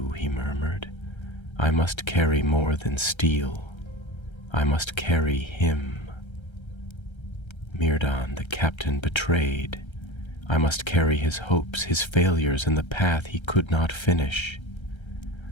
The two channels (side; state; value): right; late; 1.3 ms